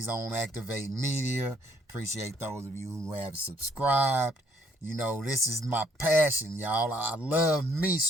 on Activate Media. Appreciate those of you who have subscribed. You know, this is my passion, y'all. I love me,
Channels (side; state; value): both; normal; correlation 0.66